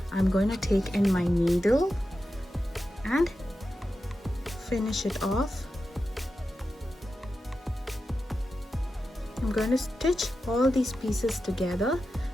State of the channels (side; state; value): both; normal; correlation 0.91